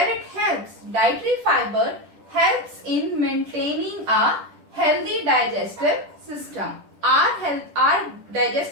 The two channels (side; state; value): left; late; 10 ms